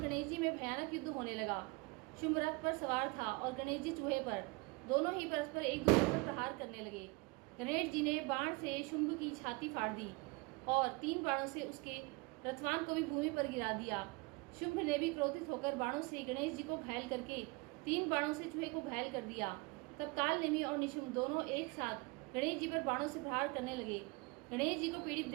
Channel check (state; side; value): quieter; left; 26.3 dB